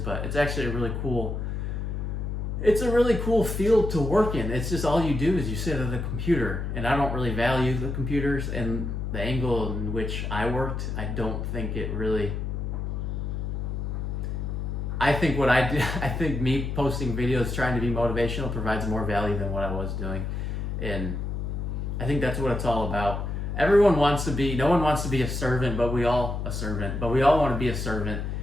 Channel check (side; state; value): left; noise; hum, 3 dB below the sound